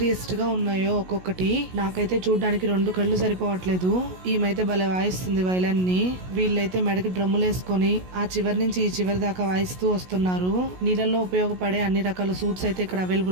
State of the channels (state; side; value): late; left; 16 ms